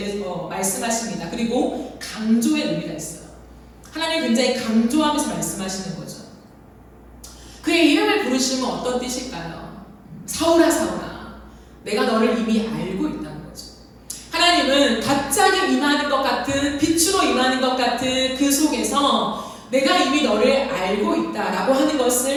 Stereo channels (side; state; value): both; identical; correlation 1.00